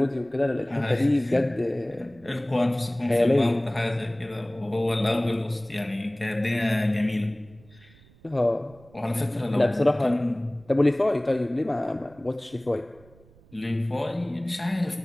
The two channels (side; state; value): right; noise; rumble, 26 dB below the sound